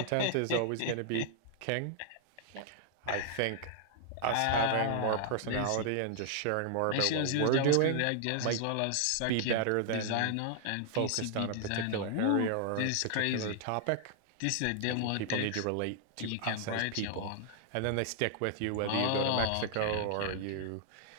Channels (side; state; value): both; different; correlation 0.00